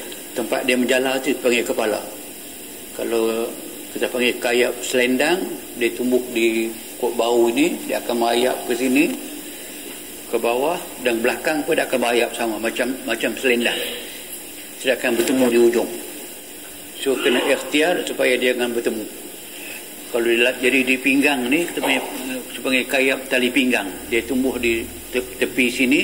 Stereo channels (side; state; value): both; identical; correlation 1.00